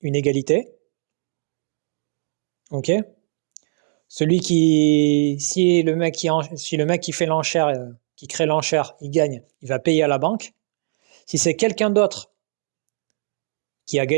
une égalité. Ok. Si le mec qui fait l'enchère, qui crée l'enchère, il gagne, il va payer à la banque. Si c'est quelqu'un d'autre qui a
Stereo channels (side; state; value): left; silent; digital silence